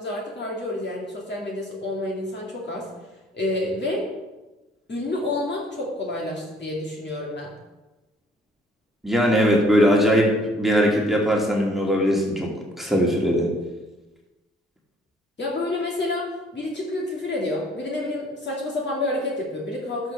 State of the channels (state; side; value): normal; both; correlation 0.59